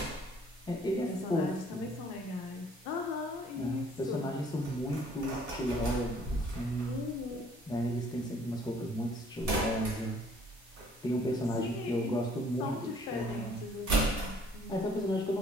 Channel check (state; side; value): normal; both; correlation 0.59